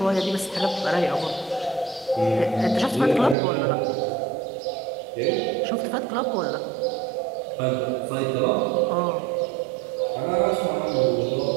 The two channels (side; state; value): left; drops out; at 3.4 s